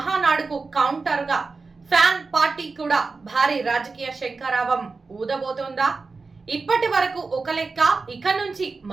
కౌంటర్ గా ఫ్యాన్ పార్టీ కూడా భారీ రాజకీయ శంఖారావం ఊదబోతోందా? ఇప్పటి వరకు ఒక లెక్క, ఇక నుంచి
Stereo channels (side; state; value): left; quieter; 4.2 dB